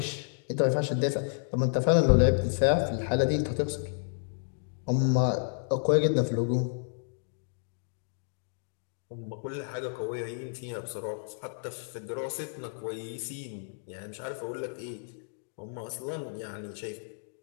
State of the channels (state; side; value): silent; right; digital silence